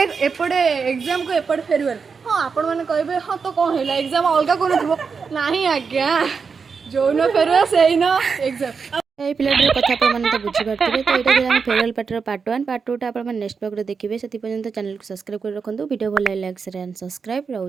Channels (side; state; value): left; quieter; 5.5 dB